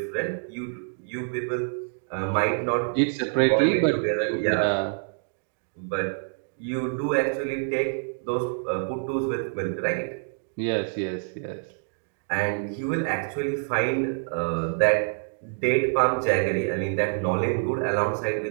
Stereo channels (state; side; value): silent; left; digital silence